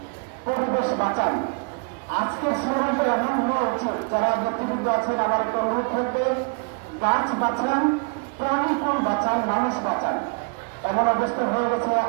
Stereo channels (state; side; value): quieter; left; 36.6 dB